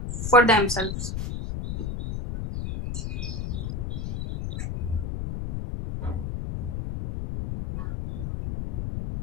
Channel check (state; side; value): noise; left; rumble, 4 dB below the sound